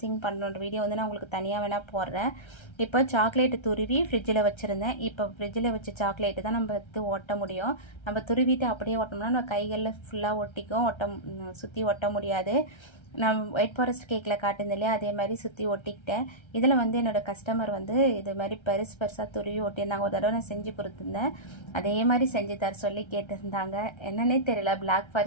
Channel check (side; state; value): right; late; 1.3 ms